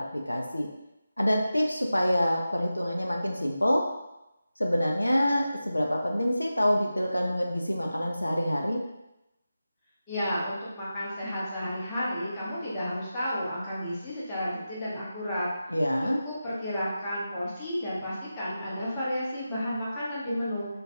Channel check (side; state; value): both; inverted; correlation -0.93